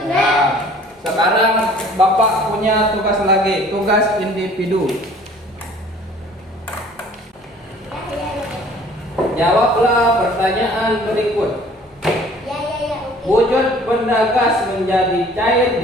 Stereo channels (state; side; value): normal; both; correlation 0.52